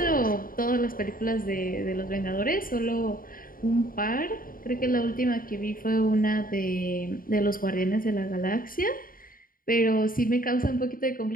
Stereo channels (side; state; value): right; late; 0.41 ms